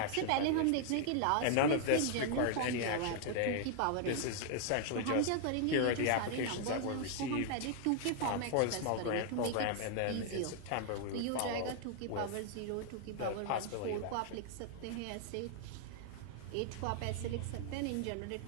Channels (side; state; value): both; different; correlation 0.00